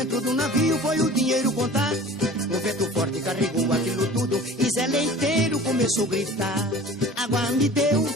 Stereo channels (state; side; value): normal; both; correlation 0.42